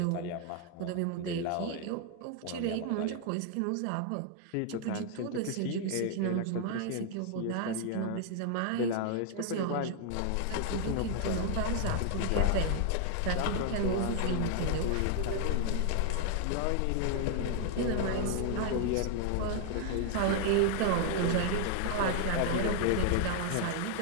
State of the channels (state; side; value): different; both; correlation 0.00